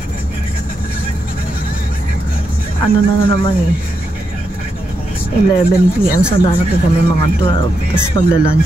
Ano na naman eh. 11 p.m. So, darating kami mga 12. Tapos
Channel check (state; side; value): normal; both; correlation 0.84